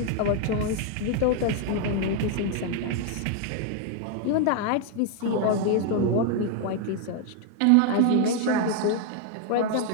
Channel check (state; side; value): different; both; correlation 0.00